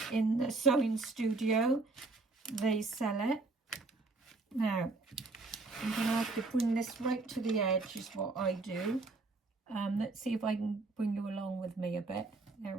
in the sewing studio. They sell it. Now I'm going to have to bring this right to the edge is what I do. Let's see if I can bring you along with me a bit. There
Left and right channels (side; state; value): left; quieter; 3.5 dB